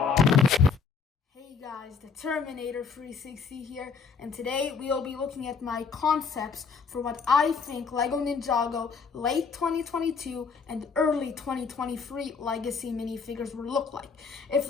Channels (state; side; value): quieter; right; 5.5 dB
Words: guys, the Terminator 360 here, and today we'll be looking at my concepts for what I think LEGO Ninjago late 2022 and early 2023 Legacy minifigures will look like. If